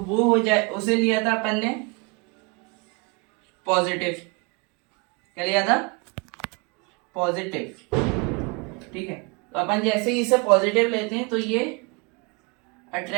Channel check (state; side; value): quieter; left; 30.5 dB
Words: हो जाए, उसे लिया था अपन ने पॉजिटिव। क्या लिया था, पॉजिटिव। ठीक है, तो अपन जैसे ही इसे पॉजिटिव लेते हैं तो ये